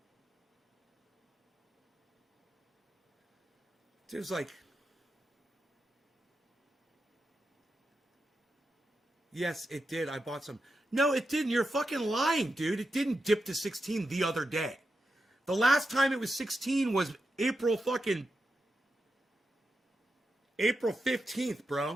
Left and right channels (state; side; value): normal; both; correlation 0.88